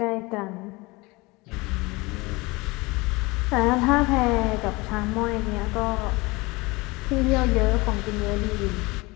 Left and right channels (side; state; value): right; quieter; 23.8 dB